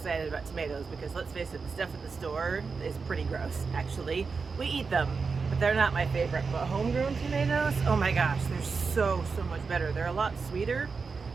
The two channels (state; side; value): quieter; left; 4.9 dB